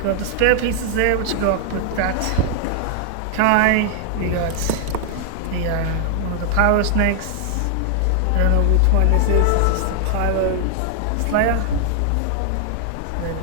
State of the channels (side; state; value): both; different; correlation 0.00